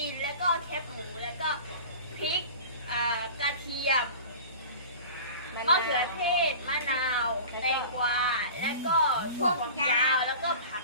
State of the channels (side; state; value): both; inverted; correlation -0.38